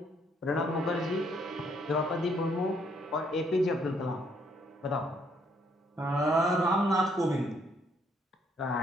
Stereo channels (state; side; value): normal; both; correlation 0.69